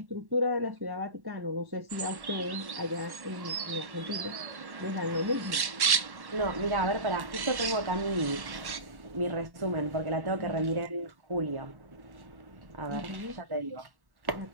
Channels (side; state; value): left; late; 1.1 ms